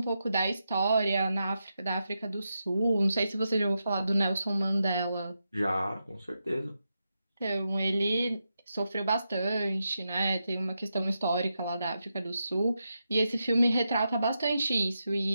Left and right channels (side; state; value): both; inverted; correlation -0.87